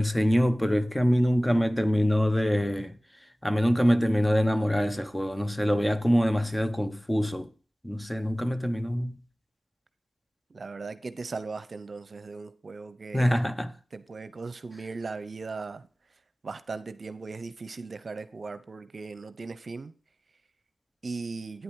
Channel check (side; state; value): both; normal; correlation 0.98